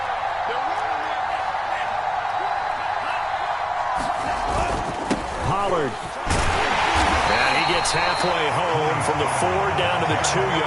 Pollard. And he gets halfway home from the 4 down to the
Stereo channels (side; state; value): both; identical; correlation 1.00